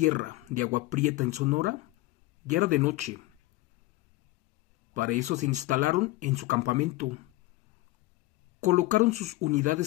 de Agua Prieta en Sonora, ya era de noche. Para eso se instalaron en su campamento, colocaron sus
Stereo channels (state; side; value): quieter; right; 19.0 dB